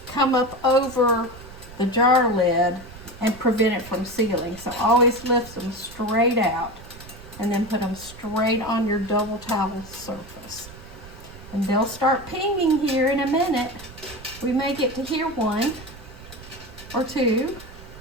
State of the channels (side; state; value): right; noise; rumble, 17 dB below the sound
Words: come up over the jar lid and prevent it from sealing. So always lift them straight out. and then put them straight on your double towel surface. And they'll start pinging here in a minute. We may get to hear 1 or 2